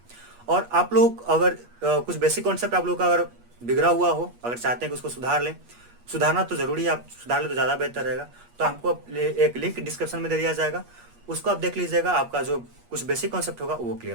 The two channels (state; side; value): late; left; 8.4 ms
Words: और आप लोग अगर कुछ बेसिक कॉन्सेप्ट आप लोग का अगर बिगड़ा हुआ हो, अगर चाहते हैं कि उसको सुधार लें, सुधारना तो जरूरी है, आप सुधार ले तो ज़्यादा बेहतर रहेगा। तो आपको एक लिंक डिस्क्रिप्शन में दे दिया जाएगा, उसको आप देख लीजिएगा, आपका जो कुछ बेसिक कॉन्सेप्ट होगा वो